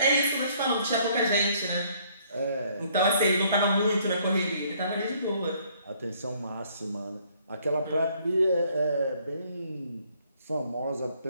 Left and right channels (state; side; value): inverted; both; correlation -0.64